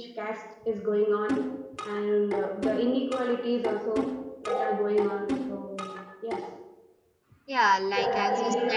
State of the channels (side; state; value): both; identical; correlation 1.00